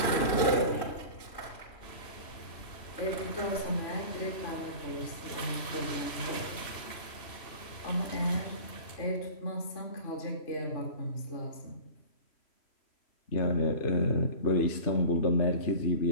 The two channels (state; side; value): late; right; 3.0 ms